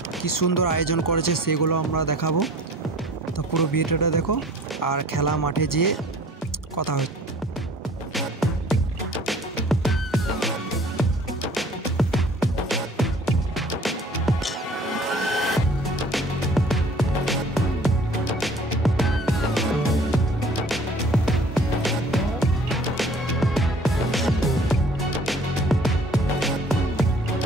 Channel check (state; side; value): normal; both; correlation 0.51